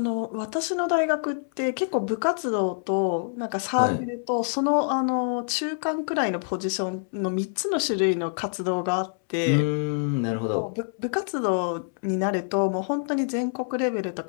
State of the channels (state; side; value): silent; right; 61 dB below the other